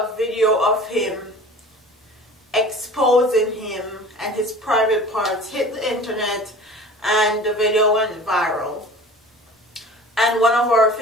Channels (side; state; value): both; normal; correlation 0.41